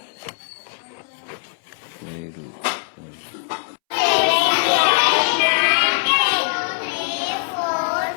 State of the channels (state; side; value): silent; right; 65 dB below the other